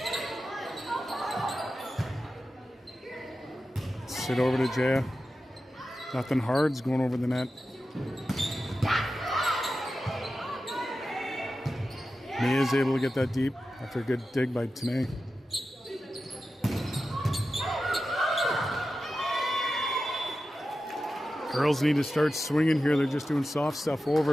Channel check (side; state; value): both; normal; correlation 0.92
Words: Sit over to Jaya. Nothing hard's going over the net. Mia's able to get that deep after a good dig by Tourney. Girls need to start swinging here. They're just doing soft stuff